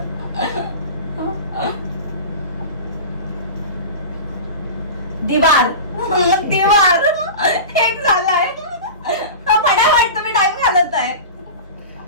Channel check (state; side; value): inverted; both; correlation -0.31